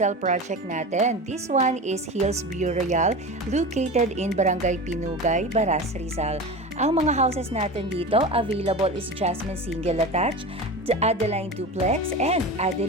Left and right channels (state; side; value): normal; both; correlation 0.29